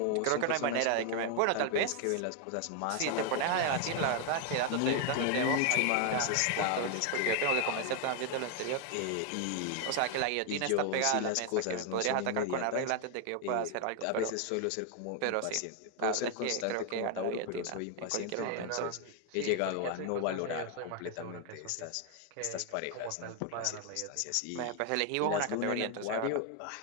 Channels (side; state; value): both; different; correlation 0.01